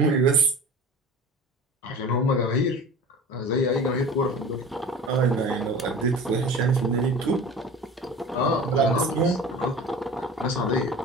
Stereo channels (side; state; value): both; normal; correlation 0.38